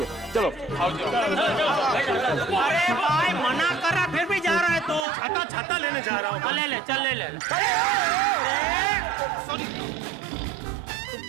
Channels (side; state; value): left; drops out; at 5.1 s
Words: चलो अरे भाई मना कर रहा फिर भी जा रहा है तो। छाता छाता लेने जा रहा हूँ। ले ले चल ले ले। सॉरी।